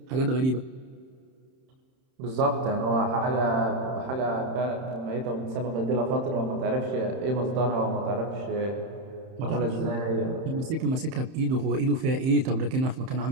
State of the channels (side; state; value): left; late; 31 ms